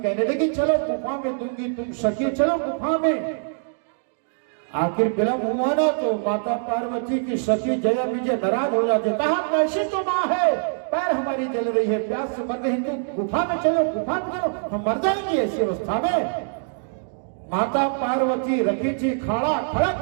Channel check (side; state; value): left; silent; digital silence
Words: लगी चलो गुफा में दूंगी, तुम सखी चलो गुफा में। आखिर विलंब हुआ ना, तो माता पार्वती की सखी जया विजय नाराज हो जाते, कहा कैसी तो माँ है, पैर हमारी जल रही है, प्यास से मर रही, तुम गुफा में चलो, गुफा में चलो, हम मर जाएंगे ऐसी अवस्था में। माता पार्वती रखी थी खाड़ा